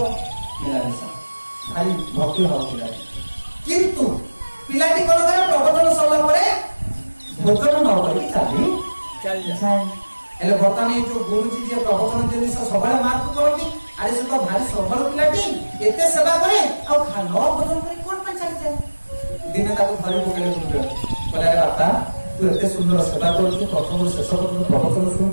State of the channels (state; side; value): inverted; both; correlation -1.00